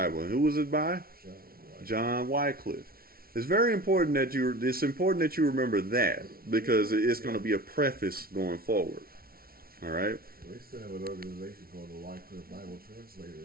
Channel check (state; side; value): late; left; 0.43 ms